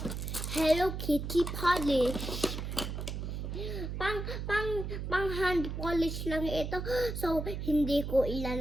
Hello Kitty polish. Pang hand polish lang ito. So, hindi ko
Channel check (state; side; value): noise; right; hum, 4 dB below the sound